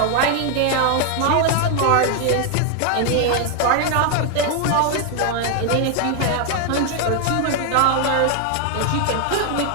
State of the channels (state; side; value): different; both; correlation 0.00